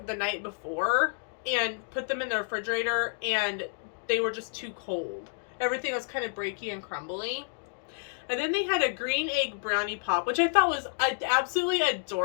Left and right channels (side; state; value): right; silent; digital silence